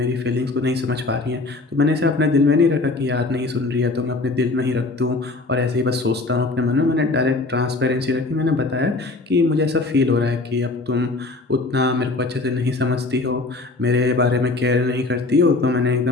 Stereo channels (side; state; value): right; quieter; 3.3 dB